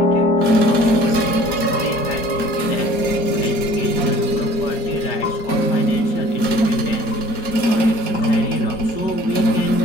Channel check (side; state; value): right; late; 4.3 ms